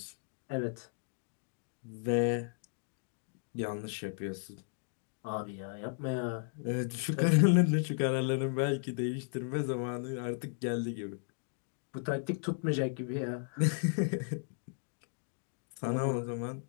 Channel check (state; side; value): silent; right; digital silence